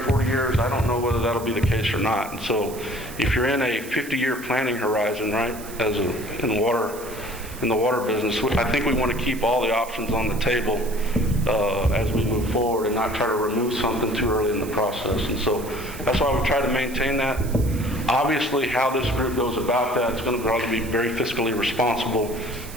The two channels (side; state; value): right; noise; hiss, 15 dB below the sound